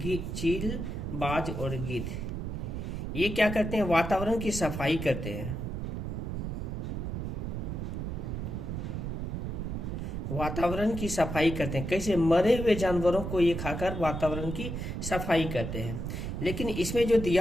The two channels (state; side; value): noise; right; rumble, 4 dB below the sound